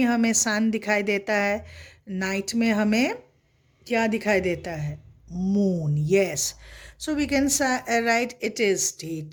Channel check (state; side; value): identical; both; correlation 1.00